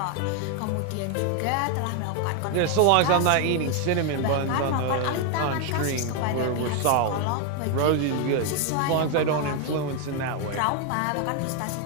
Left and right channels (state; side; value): different; both; correlation 0.01